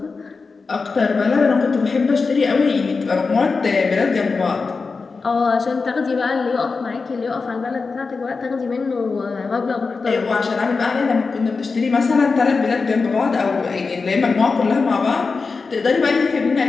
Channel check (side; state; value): right; quieter; 4.5 dB